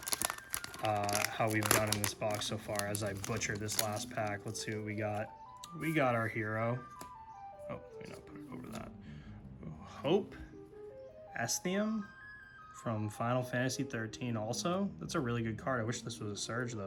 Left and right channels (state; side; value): identical; both; correlation 1.00